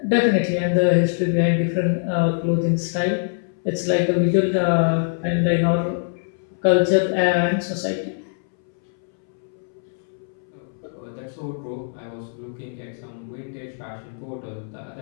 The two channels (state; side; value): silent; right; 63 dB below the other